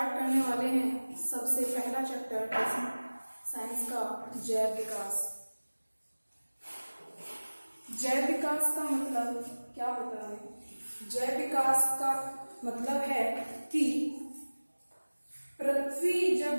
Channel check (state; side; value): inverted; both; correlation -1.00